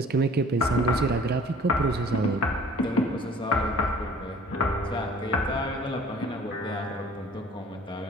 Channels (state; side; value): normal; both; correlation 0.51